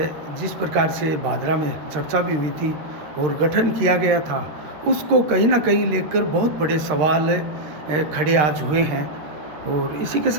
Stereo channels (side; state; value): left; late; 13 ms